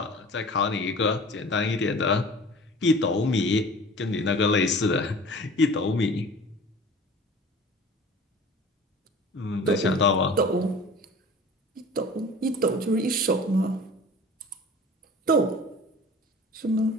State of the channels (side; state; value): both; normal; correlation 0.42